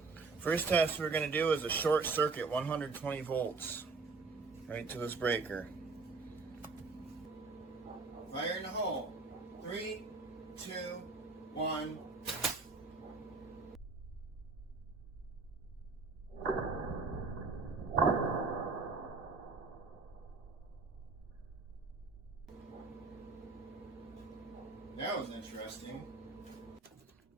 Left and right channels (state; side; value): quieter; left; 4.1 dB